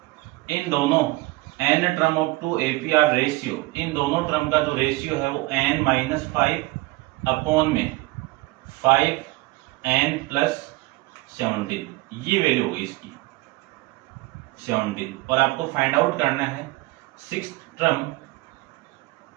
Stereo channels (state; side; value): quieter; left; 21.3 dB